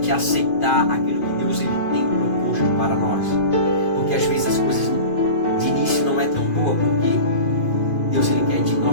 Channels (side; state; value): right; late; 2.5 ms